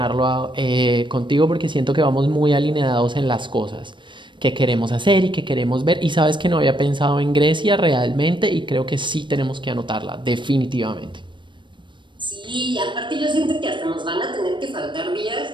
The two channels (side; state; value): left; late; 0.23 ms